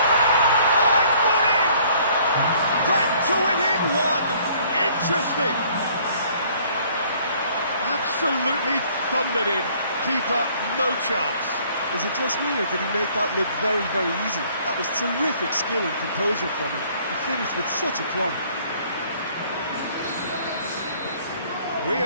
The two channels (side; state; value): both; inverted; correlation -0.59